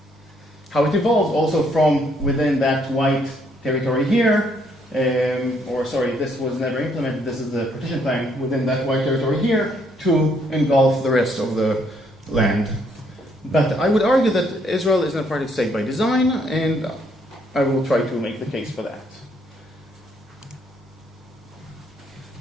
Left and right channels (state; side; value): normal; both; correlation 0.69